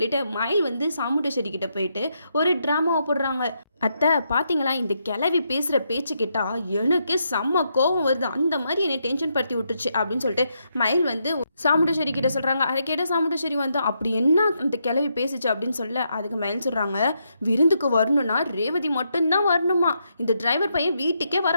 மயில் வந்து சாமுண்டேஸ்வரி கிட்ட போயிட்டு ஒரு ட்ராமாவை போடுறாங்க. அத்தை பார்த்தீங்களா, இந்த கிளவி பேசுகிற பேச்சு கேட்டால் எனக்கு செம்ம கோவம் வருது, அந்த மாதிரி என்னை டென்ஷன் படுத்தி விட்டுருச்சு அப்படின்னு சொல்லிட்டு மயில் வந்து சாமுண்டேஸ்வரி கிட்ட சொல்கிறாங்க. அதை கேட்ட சாமுண்டேஸ்வரி வந்து அப்படி என்ன அந்த கிளவி பேசிச்சு அப்படின்னு சொல்ல, அதுக்கு மயில் சொல்கிறாங்க, விருந்துக்கு வரணும்னா ரேவதி மட்டும்தான் வரணுமா, இந்த டிரைவர் பையன் வீட்டுக்கே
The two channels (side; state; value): both; inverted; correlation -0.80